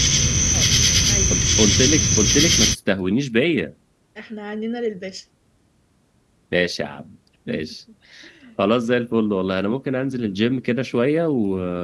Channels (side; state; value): both; identical; correlation 1.00